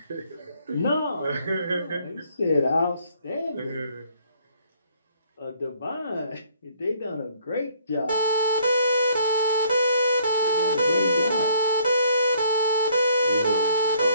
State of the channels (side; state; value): both; inverted; correlation -0.62